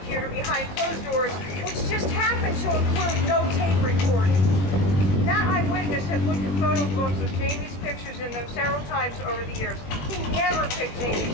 behind closed doors, which just happened to include no tape recording. That eyewitness had looked at photo books with Jamie's pictures in them several times over the years. He never picked Jamie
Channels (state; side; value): late; right; 21 ms